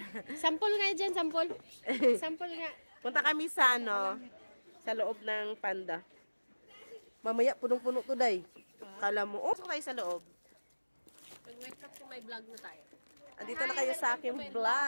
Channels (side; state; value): both; inverted; correlation -1.00